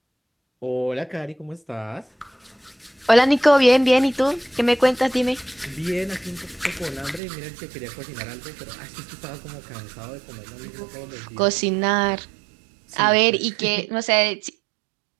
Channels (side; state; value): left; drops out; at 7.2 s